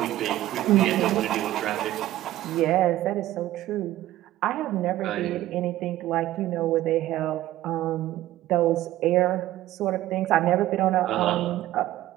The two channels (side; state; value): left; quieter; 14.7 dB